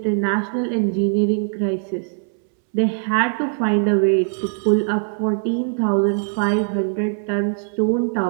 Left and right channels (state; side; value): silent; left; 65 dB below the other